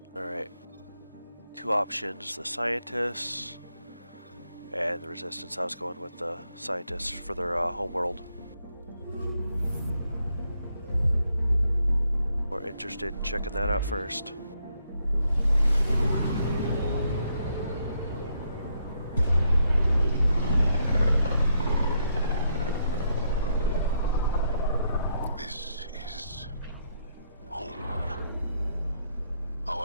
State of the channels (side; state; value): both; inverted; correlation -0.76